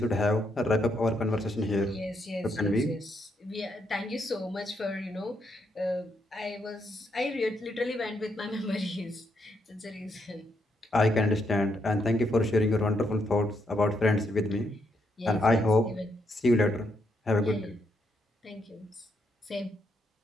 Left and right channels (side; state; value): both; normal; correlation 0.78